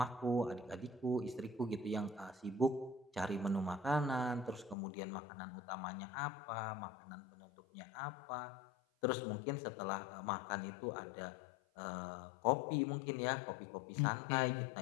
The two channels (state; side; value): drops out; right; at 4.8 s